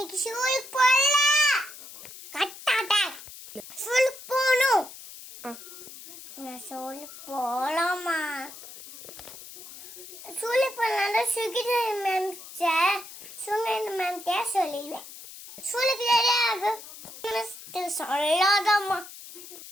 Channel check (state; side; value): noise; left; hiss, 15 dB below the sound